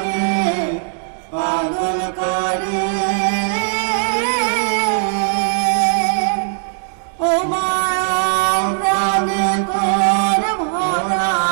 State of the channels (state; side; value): silent; left; digital silence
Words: পাগল করে ও মা প্রাণে তোর ভরা